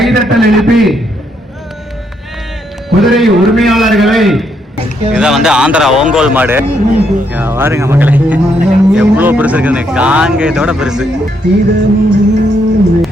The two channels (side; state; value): both; normal; correlation 0.75